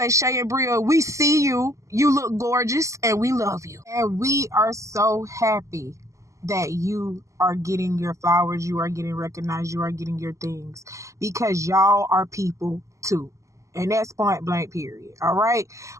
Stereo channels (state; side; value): late; left; 0.15 ms